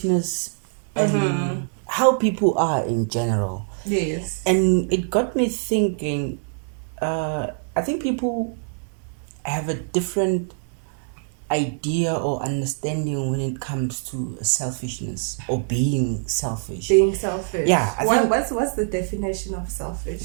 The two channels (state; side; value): silent; left; digital silence